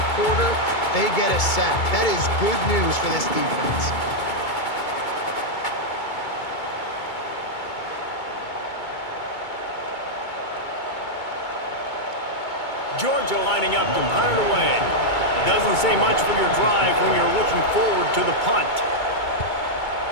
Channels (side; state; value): right; late; 2.2 ms